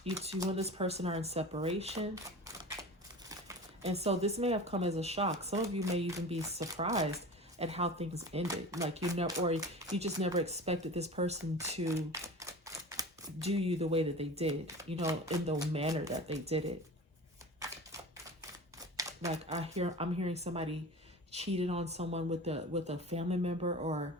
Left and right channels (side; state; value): both; normal; correlation 0.34